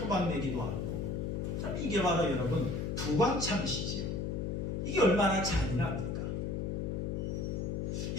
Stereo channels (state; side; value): noise; left; hum, 1 dB below the sound